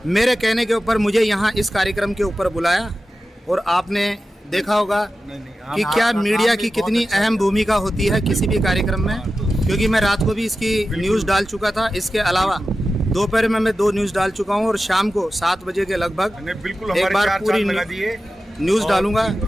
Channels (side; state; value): both; normal; correlation 0.93